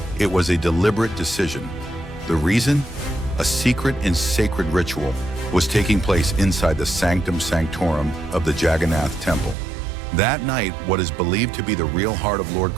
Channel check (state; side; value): drops out; left; at 9.6 s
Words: It was a deliberate decision. The reason? A secret and sacred ritual was taking place inside the sanctum sanctorum of the Jagannath Temple. That night, what is believed to be the real heart of Lord